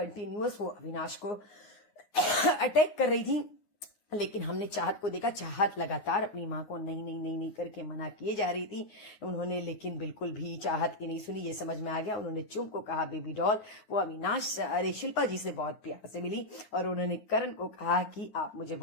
वो अविनाश को अटैक कर रही थी। लेकिन हमने चाहत को देखा, चाहत लगातार अपनी माँ को नहीं नहीं नहीं नहीं करके मना किए जा रही थी उन्होंने, लेकिन बिल्कुल भी चाहत की नहीं सुनी। ये समझ में आ गया, उन्होंने चुम को कहा बेबी डॉल। वो अविनाश अरे शिल्पा जी से बहुत प्यार से मिली और उन्होंने करण को कहा कि आप मुझे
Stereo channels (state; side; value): late; right; 9.7 ms